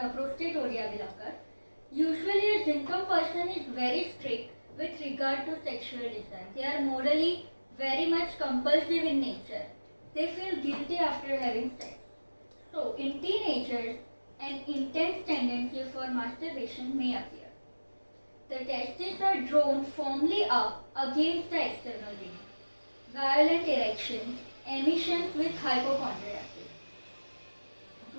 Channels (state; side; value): inverted; both; correlation -1.00